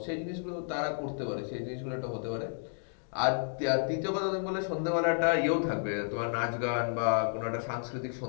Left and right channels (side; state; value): right; silent; digital silence